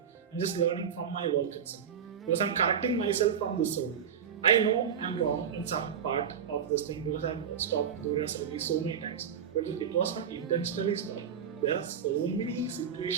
I'm just learning from my work itself because I'm correcting myself from this story. I know I'm wrong in some part of this thing because I've stopped Dhoora so many times, but it was not intentionally stopped. There are so many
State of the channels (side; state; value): left; quieter; 7.7 dB